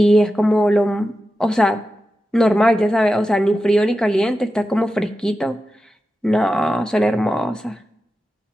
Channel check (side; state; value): both; normal; correlation 0.92